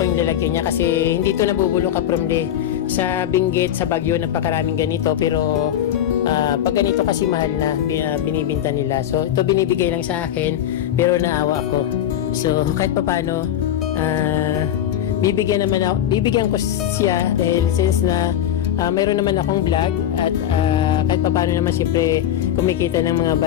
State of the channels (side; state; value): right; quieter; 11.0 dB